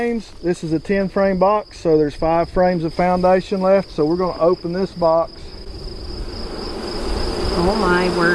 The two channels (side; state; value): both; identical; correlation 1.00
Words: This is a 10 frame box, so there's 5 frames of foundation left. So we're going to open this box. Oh my